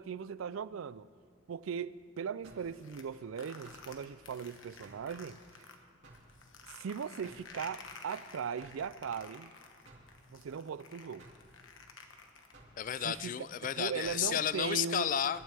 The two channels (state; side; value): normal; both; correlation -0.16